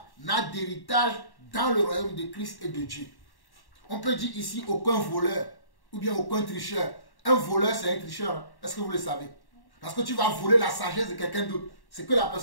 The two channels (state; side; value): late; right; 1.1 ms